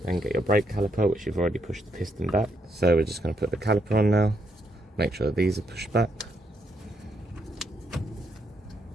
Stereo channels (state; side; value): normal; both; correlation 0.77